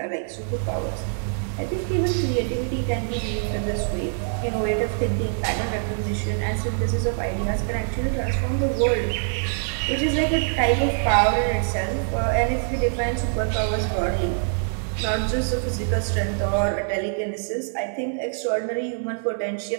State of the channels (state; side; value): silent; left; digital silence